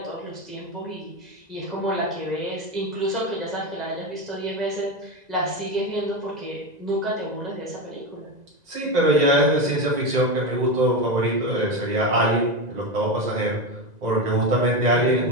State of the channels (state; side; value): late; left; 2.0 ms